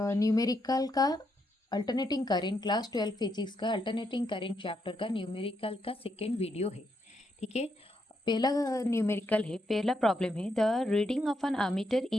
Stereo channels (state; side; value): normal; both; correlation 0.79